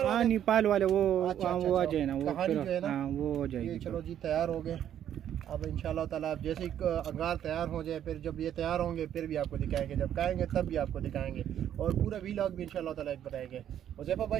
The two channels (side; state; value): left; quieter; 10.3 dB